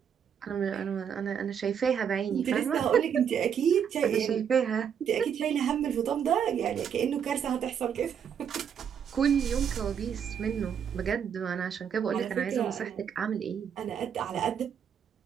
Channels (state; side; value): quieter; left; 7.9 dB